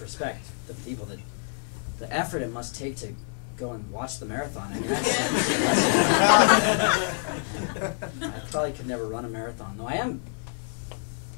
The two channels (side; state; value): right; silent; digital silence